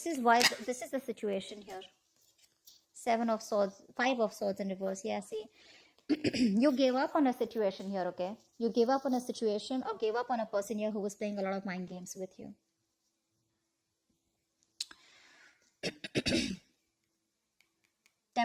is the situation here. Seven of Swords, Five of Swords in reverse. Yeah, see? You gave up on a situation here, okay? You gave up on a situation or gave up on a person here who was playing a lot of mind games with you.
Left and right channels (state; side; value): identical; both; correlation 1.00